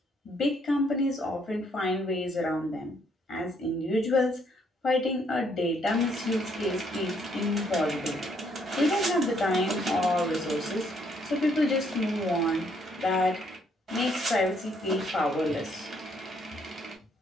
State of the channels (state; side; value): normal; both; correlation 0.69